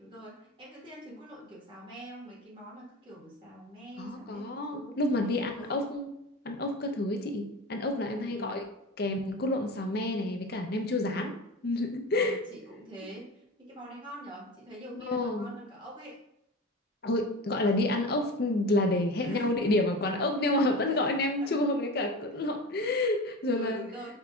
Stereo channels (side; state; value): both; normal; correlation 0.30